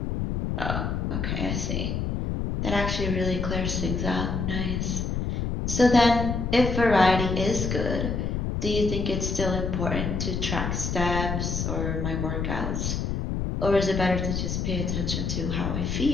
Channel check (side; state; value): left; noise; rumble, 1 dB below the sound